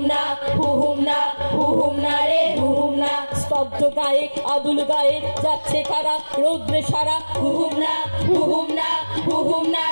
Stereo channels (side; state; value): both; inverted; correlation -1.00